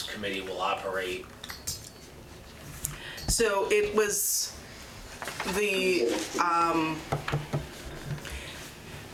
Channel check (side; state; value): both; identical; correlation 1.00